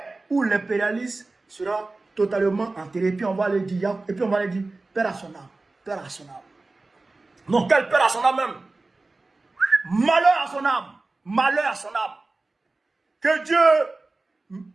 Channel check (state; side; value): quieter; left; 3.3 dB